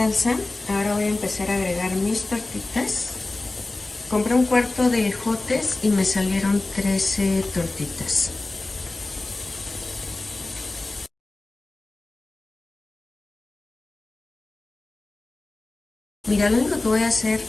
ahora voy a empezar a agregar mis tortitas. Compré un cuarto de ejotes y me salieron 13 tortitas. Mira, lo único que voy a hacer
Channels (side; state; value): right; quieter; 3.1 dB